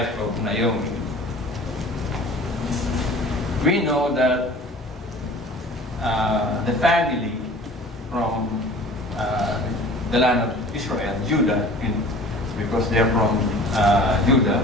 of Naomi. We know that the family from the land of Israel, Judah, because they're from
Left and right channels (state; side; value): normal; both; correlation 0.44